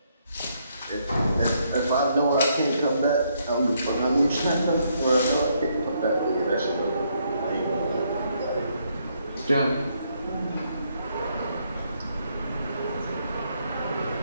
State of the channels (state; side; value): inverted; both; correlation -0.73